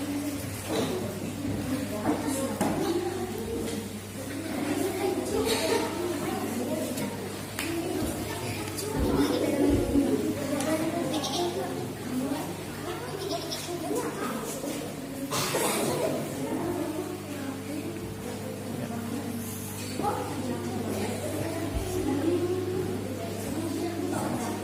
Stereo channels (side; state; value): both; identical; correlation 1.00